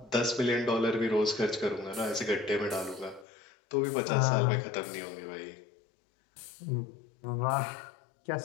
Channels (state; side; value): drops out; right; at 3.2 s